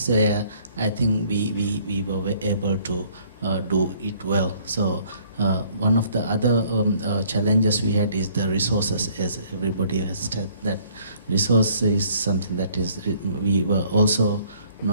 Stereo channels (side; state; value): both; inverted; correlation -0.60